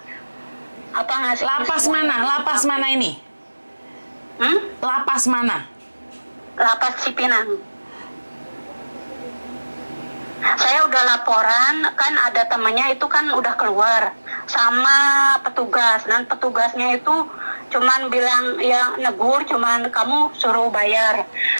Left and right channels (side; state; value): both; inverted; correlation -1.00